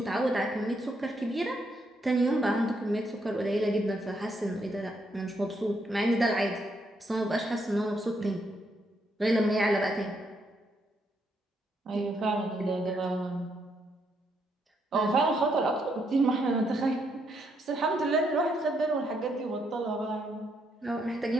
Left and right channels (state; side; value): normal; both; correlation 0.76